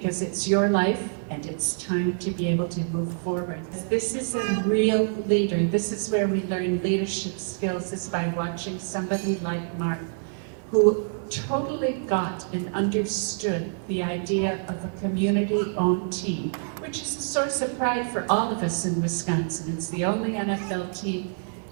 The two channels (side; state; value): left; silent; digital silence